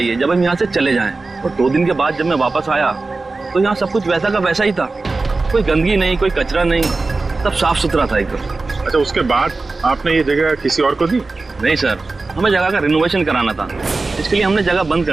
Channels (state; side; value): quieter; left; 3.6 dB